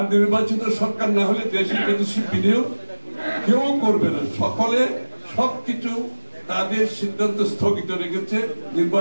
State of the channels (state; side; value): inverted; both; correlation -1.00